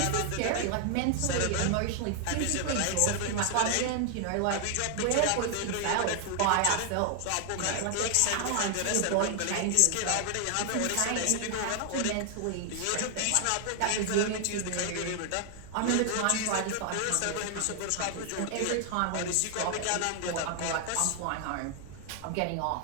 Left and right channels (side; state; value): both; different; correlation 0.00